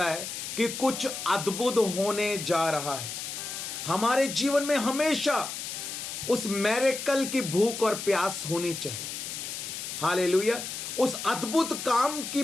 है कि कुछ अद्भुत होने जा रहा है। हमारे जीवन में हमेशा उस मिरेकल की भूख और प्यास होनी चाहिए। हालेलुया। उस अद्भुत काम की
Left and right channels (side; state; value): left; noise; hiss, 6 dB below the sound